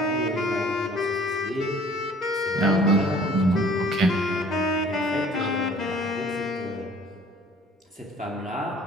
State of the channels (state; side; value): normal; both; correlation 0.53